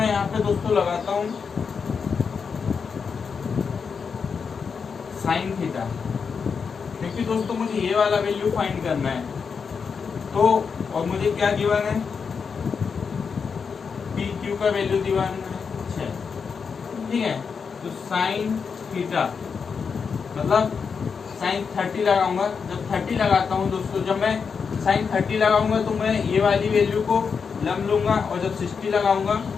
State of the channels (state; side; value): quieter; right; 5.9 dB